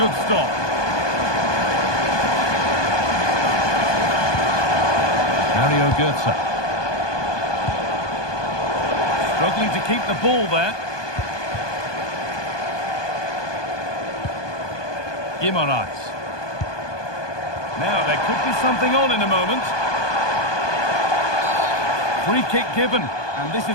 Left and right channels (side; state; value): right; late; 1.2 ms